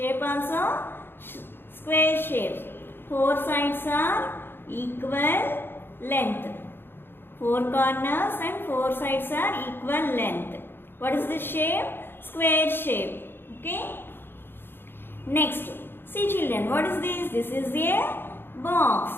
also square shape. 4 sides are equal length. 4 corners and 4 sides are equal length. What is the shape? Square shape. Okay. Next. See children, what is this? This is a box.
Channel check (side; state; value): right; late; 0.10 ms